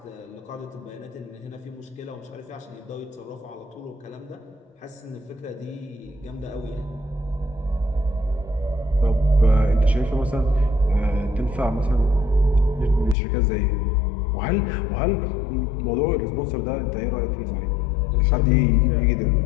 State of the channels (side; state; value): right; drops out; at 13.2 s